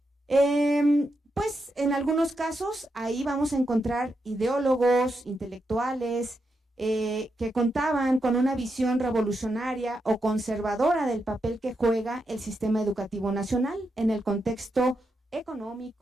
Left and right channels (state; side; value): normal; both; correlation 0.84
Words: Pues en algunos casos ahí vamos a encontrar ideólogos, intelectuales, que contaban con una visión revolucionaria o conservadora del papel que juega el sistema educativo nacional en el contexto